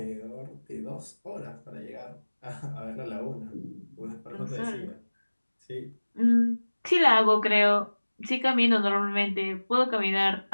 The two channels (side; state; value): both; inverted; correlation -1.00